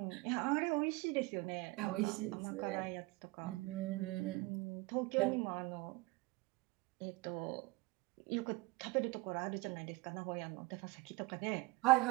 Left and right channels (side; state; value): left; quieter; 22.9 dB